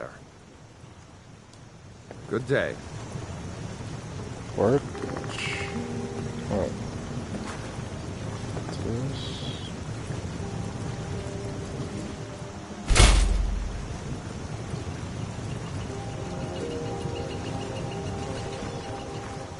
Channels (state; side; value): identical; both; correlation 1.00